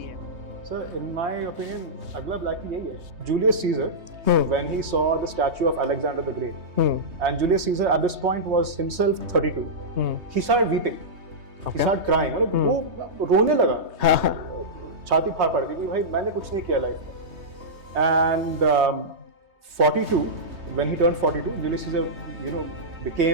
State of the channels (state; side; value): late; left; 3.2 ms